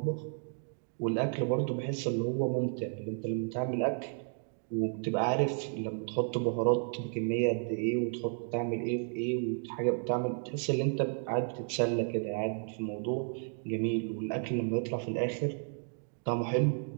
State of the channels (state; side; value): silent; left; 56 dB below the other